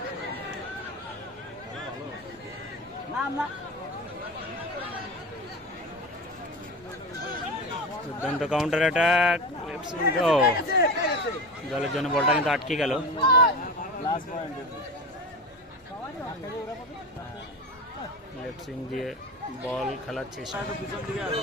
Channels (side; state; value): both; normal; correlation 0.25